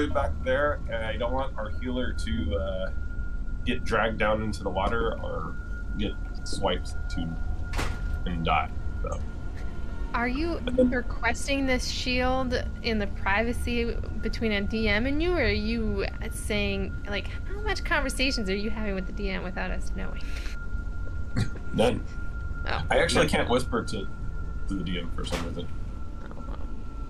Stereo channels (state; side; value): identical; both; correlation 1.00